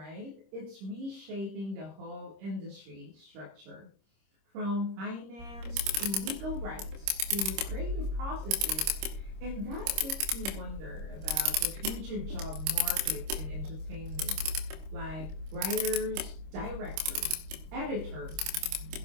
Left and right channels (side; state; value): left; late; 26 ms